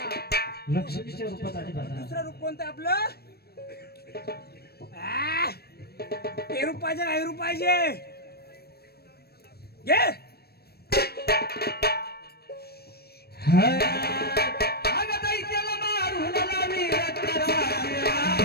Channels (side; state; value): right; late; 0.46 ms